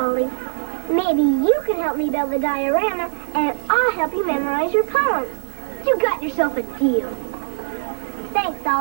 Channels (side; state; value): left; silent; 60 dB below the other